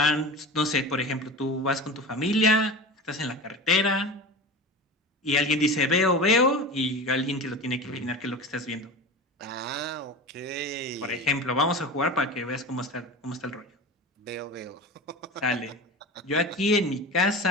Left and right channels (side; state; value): both; normal; correlation 0.30